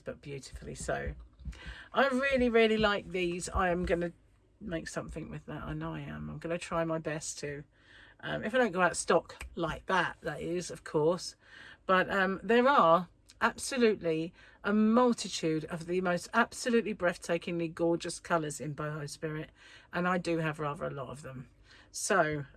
but beautifully so. I really, really like these. I am going to make something with that. I know I am. I'm going to try my best to. If I don't go out of stock like that, that is, of course. But there are absolutely a multitude of the most absolutely breathtakingly gorgeous colours in Boho Spirit, and I do have rather a lot of them, so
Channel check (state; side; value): identical; both; correlation 1.00